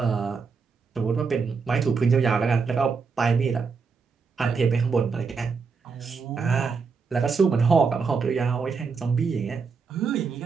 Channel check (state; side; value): quieter; left; 5.2 dB